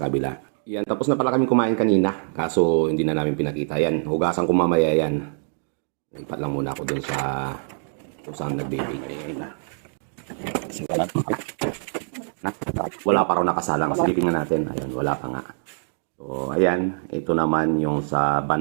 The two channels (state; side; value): silent; left; 62 dB below the other